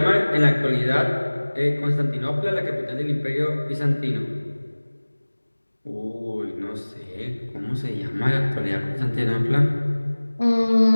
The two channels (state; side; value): inverted; both; correlation -1.00